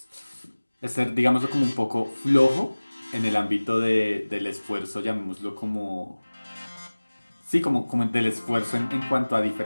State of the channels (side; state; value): both; inverted; correlation -1.00